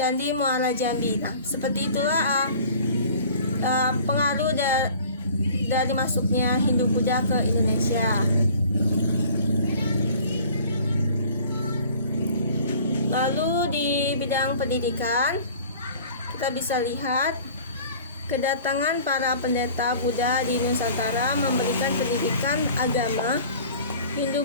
Muara Jambi. Nah, seperti itulah pengaruh dari masuknya Hindu Buddha ke Indonesia. Lalu di bidang pendidikan kita bisa lihat kedatangan para pendeta Buddha di Nusantara memberikan pendidikan agama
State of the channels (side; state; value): both; inverted; correlation -0.47